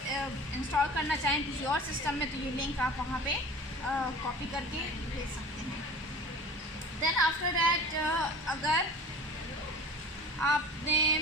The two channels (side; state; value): both; normal; correlation 0.40